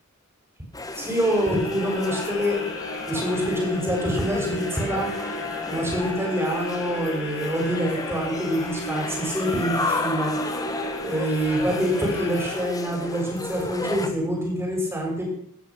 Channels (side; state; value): both; normal; correlation 0.58